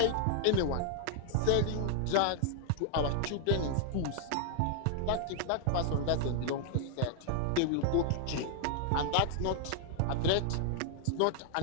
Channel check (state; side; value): different; both; correlation 0.00